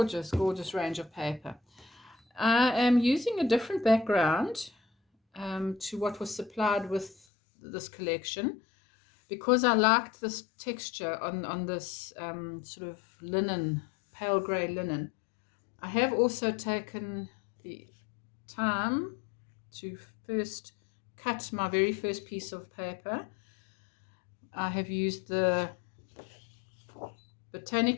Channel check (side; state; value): right; drops out; at 7.2 s